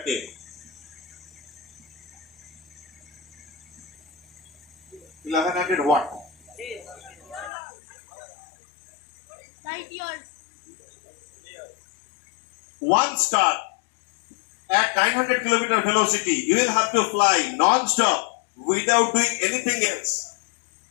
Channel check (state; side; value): drops out; right; at 7.5 s